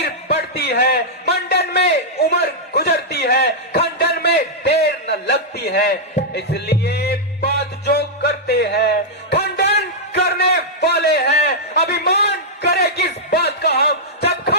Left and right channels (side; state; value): both; normal; correlation -0.08